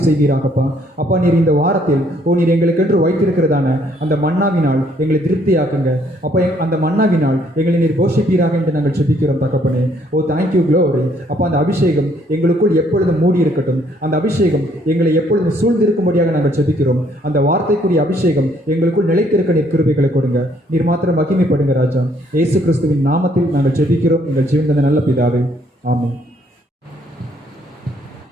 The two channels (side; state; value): both; normal; correlation 0.66